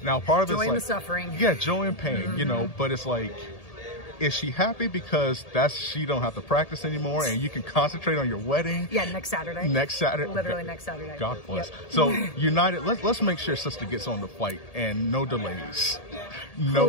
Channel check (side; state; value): right; late; 1.8 ms